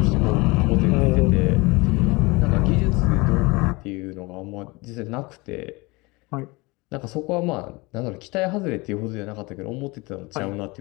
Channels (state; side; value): quieter; right; 24.7 dB